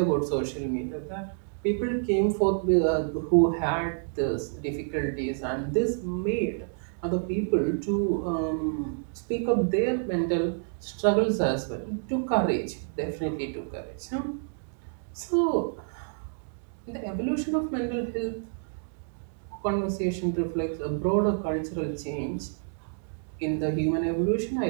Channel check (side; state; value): left; silent; digital silence